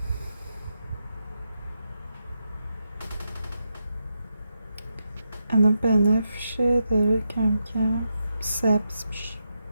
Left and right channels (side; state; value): both; inverted; correlation -0.85